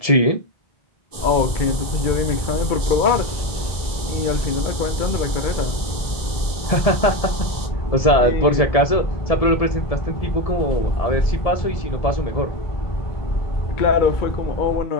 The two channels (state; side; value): late; right; 1.7 ms